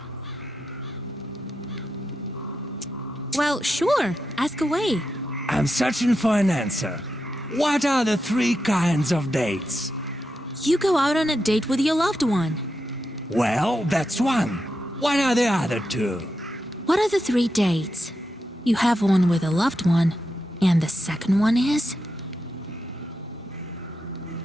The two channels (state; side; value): normal; both; correlation 0.87